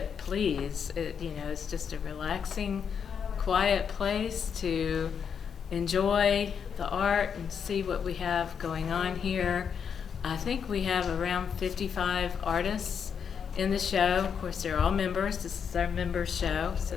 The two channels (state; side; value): quieter; right; 7.1 dB